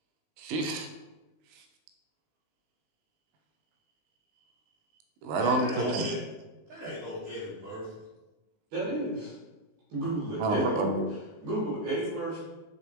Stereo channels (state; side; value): late; left; 19 ms